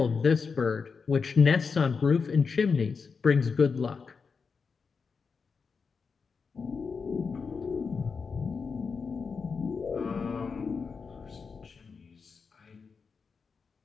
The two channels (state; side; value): quieter; right; 5.3 dB